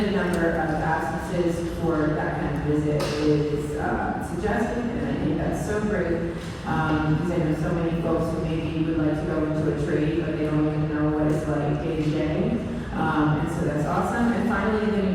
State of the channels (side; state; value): both; identical; correlation 1.00